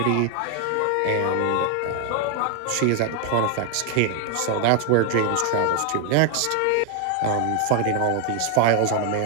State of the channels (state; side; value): different; both; correlation 0.01